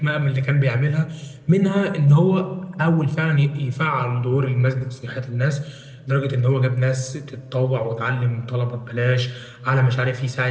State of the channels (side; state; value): both; identical; correlation 1.00